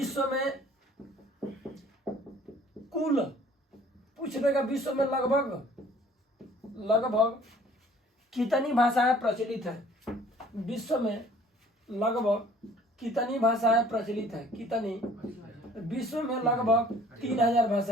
में कुल पूछ देगा, विश्व में लगभग कितनी भाषाएं प्रचलित है? विश्व में लगभग कितनी भाषाएं प्रचलित है? कितनी? विश्व में लगभग 3000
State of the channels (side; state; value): both; normal; correlation 0.53